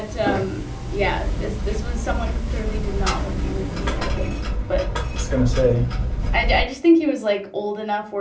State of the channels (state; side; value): identical; both; correlation 1.00